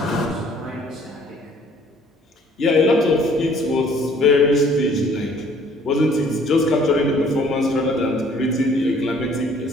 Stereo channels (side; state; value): both; normal; correlation 0.58